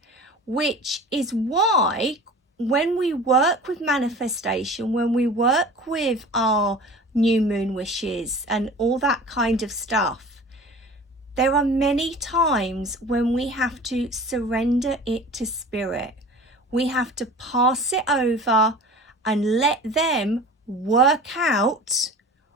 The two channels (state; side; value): normal; both; correlation 0.40